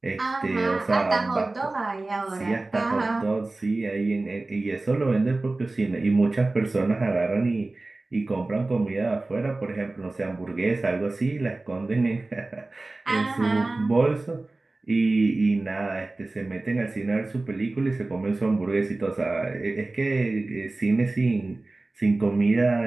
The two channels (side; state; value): left; quieter; 3.1 dB